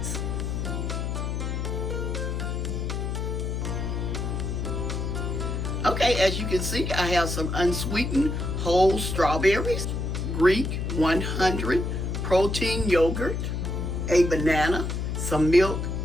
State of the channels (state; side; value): noise; left; hum, 2 dB below the sound